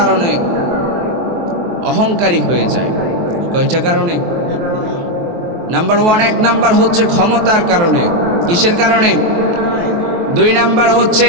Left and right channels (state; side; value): late; left; 23 ms